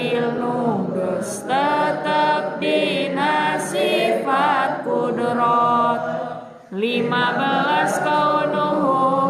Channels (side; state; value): both; identical; correlation 1.00